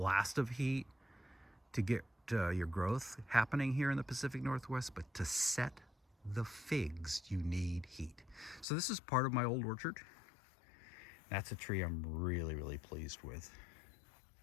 of heat to get your growth happening here in the Pacific Northwest, but to set the figs, you need heat. So this is part of my old orchard. That's a tree I'm really, really pleased with.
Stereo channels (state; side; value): drops out; right; at 8.7 s